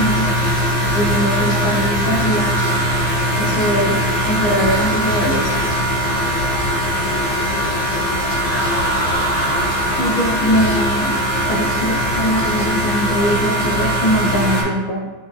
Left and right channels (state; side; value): late; right; 15 ms